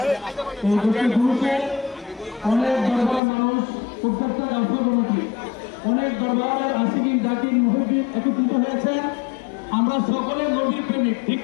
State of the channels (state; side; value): drops out; right; at 3.2 s